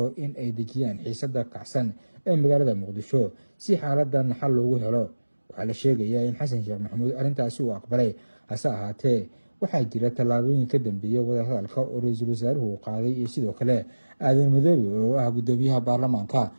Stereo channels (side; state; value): both; inverted; correlation -1.00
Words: in ay dejiyaan xiisada kacsan ee magaalada muqdisho si xaaladan xal loogu helo. waxaa la sheegayaa in xasan sheekh maxamuud arrintaasi uu aqbalay, hase ahaatee waxaa jira tallaabooyin ka dambeeya wadahadalka oo ra-iisul wasaaruhu qaaday iyo sidoo kale aadan madoobe oo ah gudoomiyaha baarlamaanka,